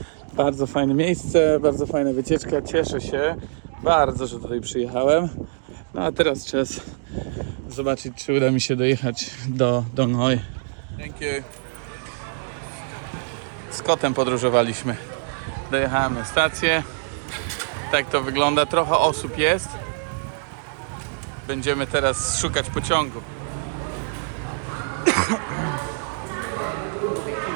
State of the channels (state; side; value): silent; left; digital silence